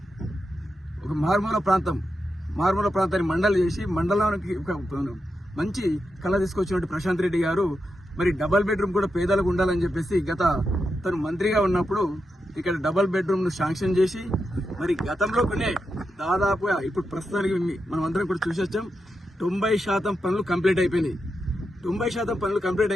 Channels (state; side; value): normal; both; correlation 0.87